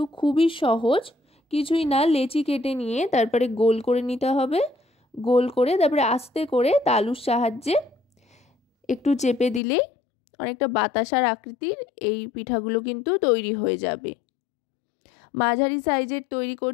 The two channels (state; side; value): drops out; right; at 9.6 s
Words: খুবই সহজ, কিছুই না। লেচি কেটে নিয়ে তারপরে গোল করে নিতে হবে। গোল করে তারপরে আস্তে করে তালুর সাহায্যে একটু চেপে দিলেই অনেকটা বাতাসার আকৃতির এই পিঠাগুলো কিন্তু তৈরি হয়ে যাবে। মাঝারি সাইজের তৈরি